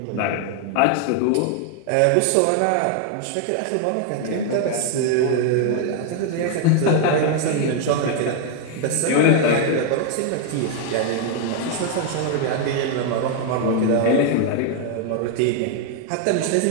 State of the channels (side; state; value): both; different; correlation 0.00